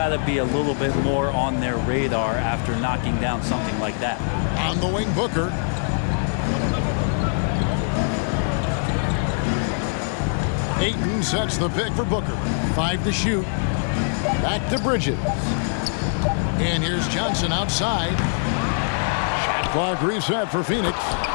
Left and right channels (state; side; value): silent; right; digital silence